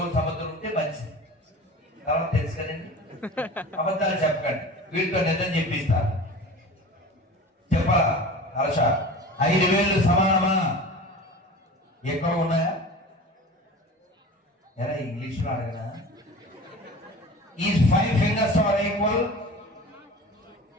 సముద్రం ఉంటే మంచిది. తర్వాత తెలుసు కదండి, అబద్ధాలు చెప్పకండి, వీటితో నిజం చెప్పిస్తారు. చెప్పాలా? హర్ష 5000 సమానమా? ఎక్కడ ఉన్నాయా? ఎలా ఇంగ్లీష్ లో అడగనా? Is 5 fingers are equal?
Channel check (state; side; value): normal; both; correlation 0.37